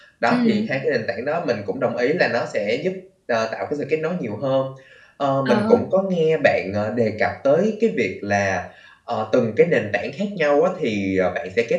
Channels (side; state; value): both; identical; correlation 1.00